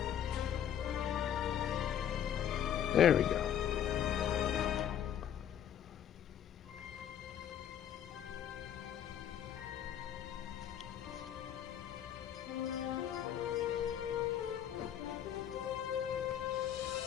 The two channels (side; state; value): right; quieter; 9.9 dB